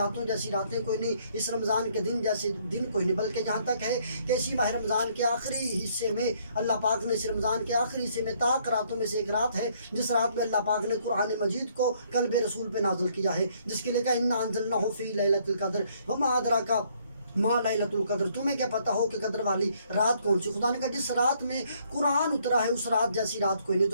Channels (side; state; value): both; inverted; correlation -0.67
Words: جیسی راتیں کوئی نہیں، اس رمضان کے دن جیسے دن کوئی نہیں، بلکہ یہاں تک ہے کہ اسی ماہ رمضان کے آخری حصے میں اللہ پاک نے اس رمضان کے آخری حصے میں طاق راتوں میں سے ایک رات ہے جس رات میں اللہ پاک نے قرآن مجید کو قلب رسول پہ نازل کیا ہے، جس کے لیے کہا انا انزلناہ فی لیلۃ القدر وما ادراک ما لیلۃ القدر، تمہیں کیا پتہ ہو کہ قدر والی رات کون سی؟ خدا نے کہا جس رات میں قرآن اترا ہے اس رات جیسی رات کوئی نہیں۔